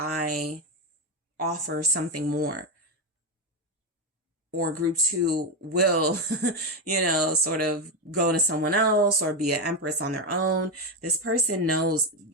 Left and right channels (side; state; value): both; normal; correlation 0.09